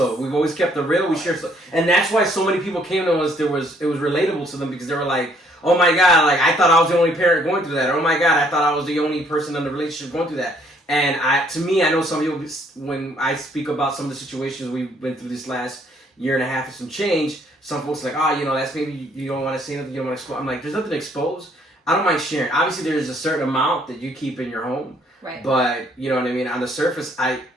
We've always kept it real. We share, and that's why so many people came to us. It was relatable to them because they were like, "Oh my God, like I thought I was the only parent going through that." Or, "Oh my God, I thought I was the only person in the relationship going through that." And to me, I know some people, when I speak about some of the situations we've been through this last year and a half and some change, some folks are like, "Oh, you know, that's maybe you don't want to say nothing, you don't want to expose." I'm like, there's nothing to expose. I don't mind sharing. Obviously, there's a certain amount that you keep in your home. Right. But, you know what I mean? On the surface,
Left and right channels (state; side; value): normal; both; correlation 0.65